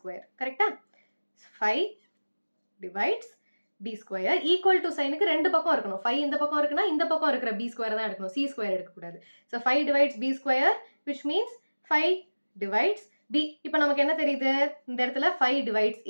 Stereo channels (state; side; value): inverted; both; correlation -1.00